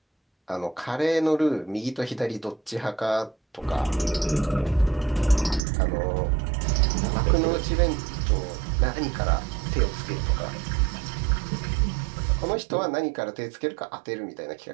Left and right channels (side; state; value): left; drops out; at 5.6 s